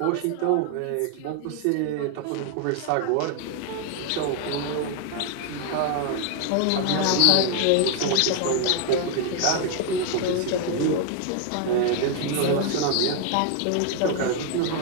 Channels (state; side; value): different; both; correlation 0.00